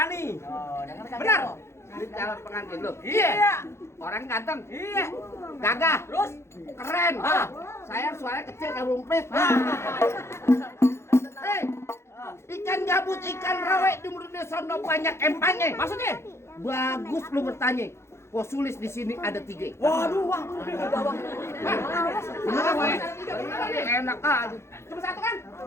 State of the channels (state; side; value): late; right; 0.13 ms